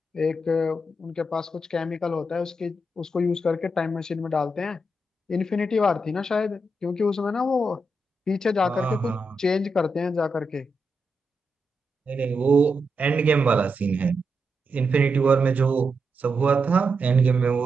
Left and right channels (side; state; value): both; normal; correlation 0.85